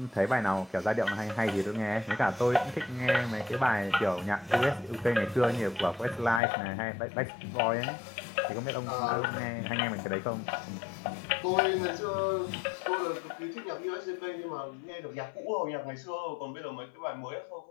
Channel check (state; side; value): drops out; right; at 6.4 s